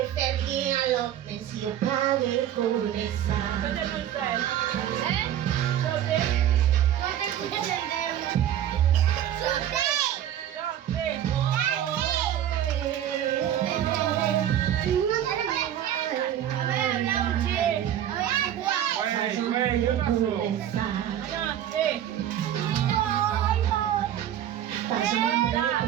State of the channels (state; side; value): quieter; left; 11.0 dB